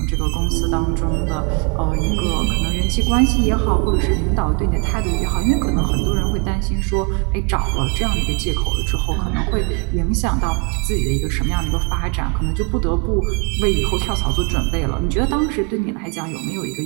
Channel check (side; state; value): left; quieter; 32.3 dB